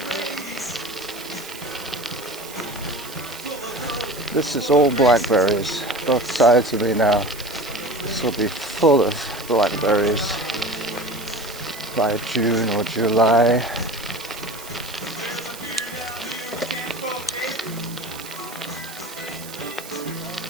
This is all blackberries, both sides of me now. This will be full of blackberries by June or July.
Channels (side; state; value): right; noise; hiss, 14 dB below the sound